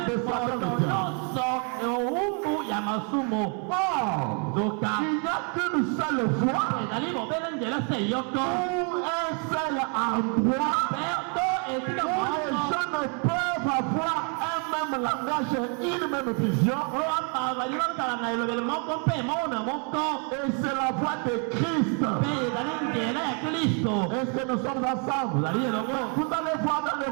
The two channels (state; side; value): quieter; left; 39.2 dB